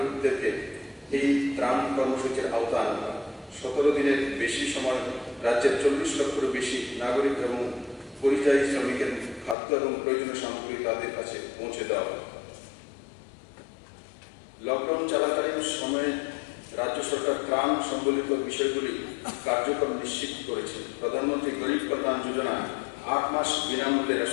এই ত্রাণ কর্মসূচির আওতায় আনা হয়। 17 দিনের বেশি সময় রাজ্যের 40 লক্ষেরও বেশি নাগরিক এবং পরিযায়ী শ্রমিকের খাদ্য এবং প্রয়োজনীয় সামগ্রী তাদের কাছে পৌঁছে দেওয়া হয়। লকডাউন চলাকালীন সময়ে রাজ্য সরকার ত্রাণ সম্বলিত বিষয়গুলি কার্যক্রম নিশ্চিত করেছে। প্রধানমন্ত্রী গরিব কল্যাণ যোজনা 8 মাস বিনামূল্যে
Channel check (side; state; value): right; drops out; at 9.6 s